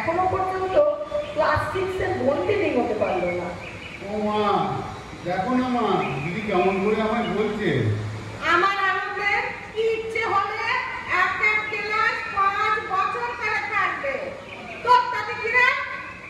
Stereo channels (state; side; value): identical; both; correlation 1.00